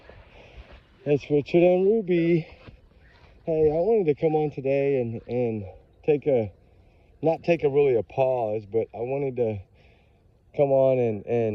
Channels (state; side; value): identical; both; correlation 1.00